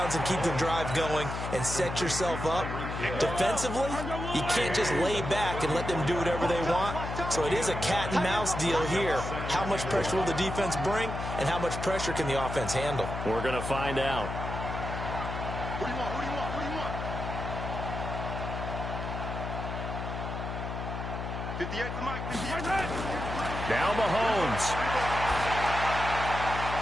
and keep the drive going and set yourself up. Defensively, you can't just lay back and let them do whatever they want. So it is a cat and mouse deal here. How much pressure will the defense bring, and how much pressure can the offense handle? We're going to find out. Who do you want? Who do you want? Who do you want? 58 to Mike. 58. Now Mahomes.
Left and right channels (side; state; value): left; noise; hum, 5 dB below the sound